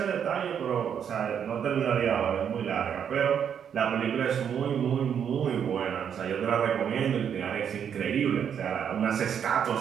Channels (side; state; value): left; quieter; 8.2 dB